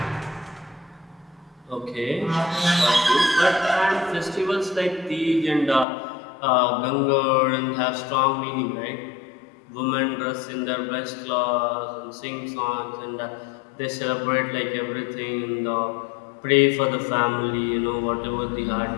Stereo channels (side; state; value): right; drops out; at 5.9 s